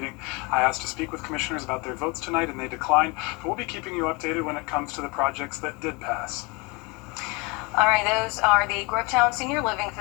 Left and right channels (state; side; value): quieter; right; 27.8 dB